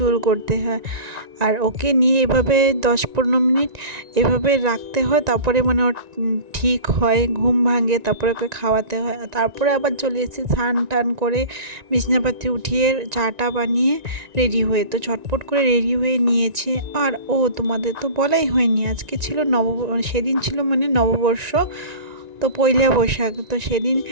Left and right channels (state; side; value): late; left; 1.9 ms